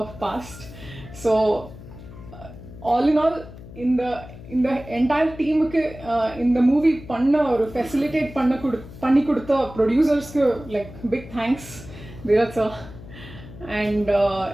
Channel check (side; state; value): left; noise; hum, 16 dB below the sound